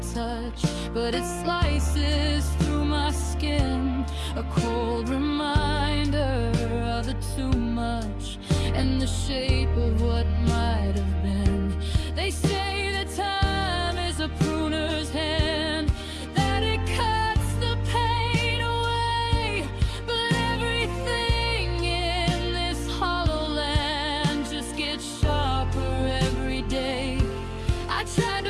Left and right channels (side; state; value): both; identical; correlation 1.00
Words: touch, but it slices through my skin, a cold reminder of the too much and the shape of what might have been. They say that time is a pruner's hand, that it cuts the pain away, but everything in this hollow land just gets sharper every day. I tried